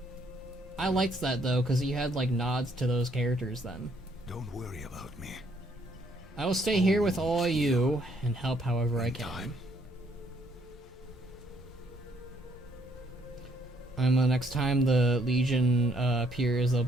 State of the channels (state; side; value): normal; both; correlation 0.68